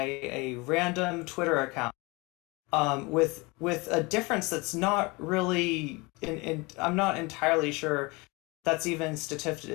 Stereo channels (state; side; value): quieter; right; 25.7 dB